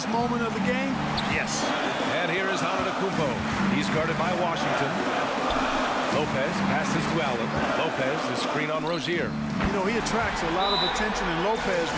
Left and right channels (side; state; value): both; identical; correlation 1.00